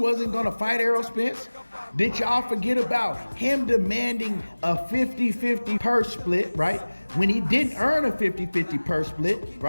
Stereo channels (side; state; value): both; inverted; correlation -1.00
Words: going to fight Errol Spence? Did y'all forget about him demanding a 50-50 purse split, right? When he didn't earn a 50-50 purse split,